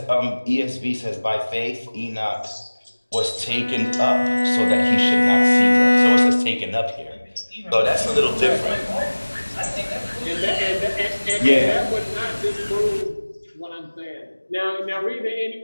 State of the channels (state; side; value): inverted; both; correlation -1.00